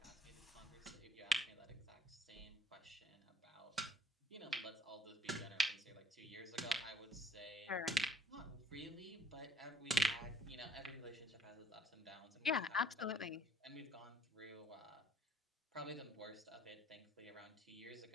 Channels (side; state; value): both; normal; correlation 0.55